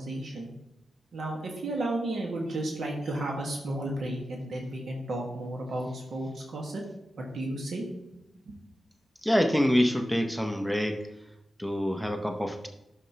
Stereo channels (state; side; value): normal; both; correlation 0.92